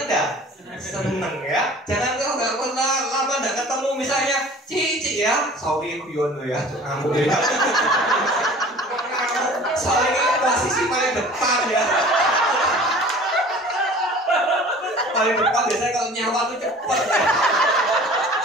gak? Seneng ya. Jangan kalau gak pernah lama gak ketemu misalnya Ci ya. Sorry guyon lo ya. Kamu ya. Soalnya posisi paling depan ya. Paling depan biasanya kalau nyawa tuh cepet ya.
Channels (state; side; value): normal; both; correlation 0.45